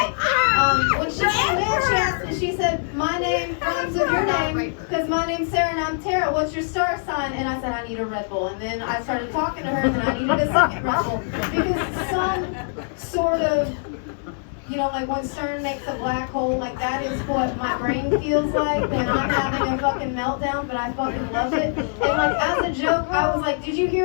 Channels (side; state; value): right; silent; 63 dB below the other